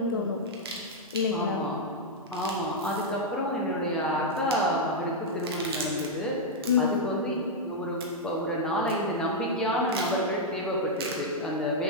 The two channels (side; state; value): both; normal; correlation -0.03